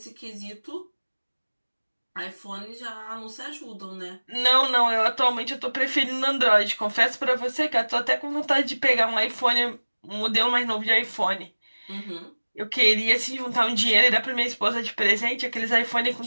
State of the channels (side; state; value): both; inverted; correlation -1.00